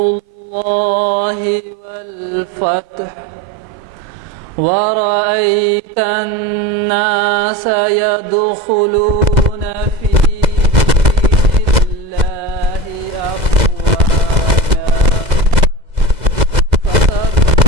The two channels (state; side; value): late; left; 2.0 ms